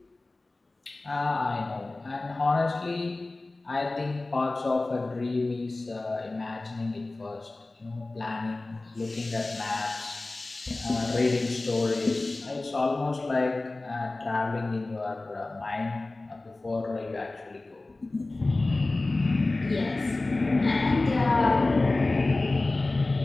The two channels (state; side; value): quieter; right; 3.1 dB